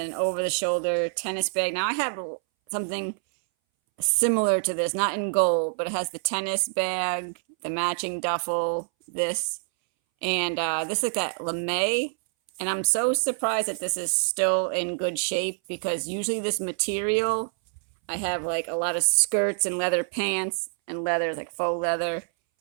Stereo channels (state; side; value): silent; left; 61 dB below the other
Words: an over-the-shoulder tennis bag. Now I have something similar to this, not in gold, but it has the tennis bag, the matching duffel, this, and this like that lame. And I'm so surprised that this is still in good shape because usually this material, I have like a lot of skirts and leather pants and leathers, like faux leather,